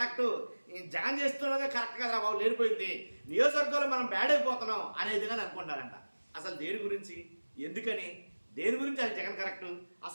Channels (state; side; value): inverted; both; correlation -1.00